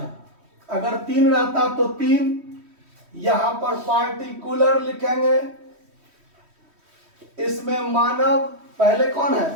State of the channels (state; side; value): late; left; 3.1 ms